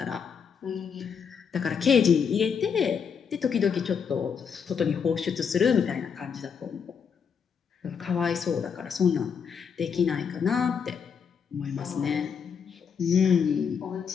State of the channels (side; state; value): right; quieter; 6.7 dB